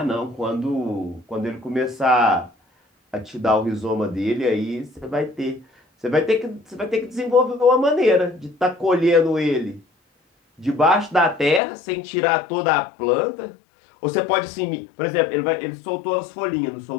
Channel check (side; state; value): right; drops out; at 11.6 s